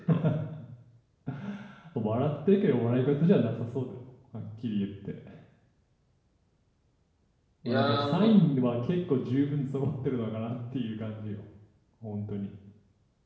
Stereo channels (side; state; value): both; identical; correlation 1.00